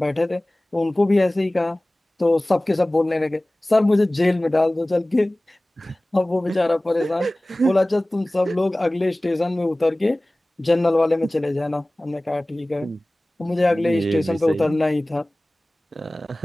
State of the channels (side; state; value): both; normal; correlation 0.98